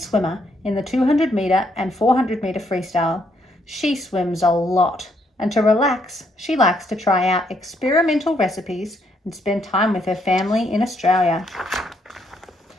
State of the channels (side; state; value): both; normal; correlation 0.73